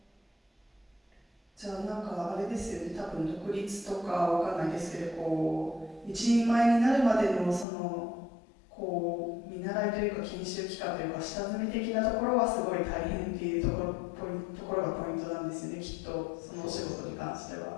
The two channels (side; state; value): right; drops out; at 7.7 s